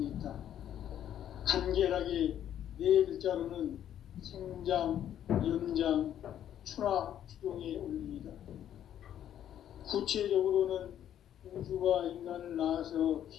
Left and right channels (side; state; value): right; quieter; 10.6 dB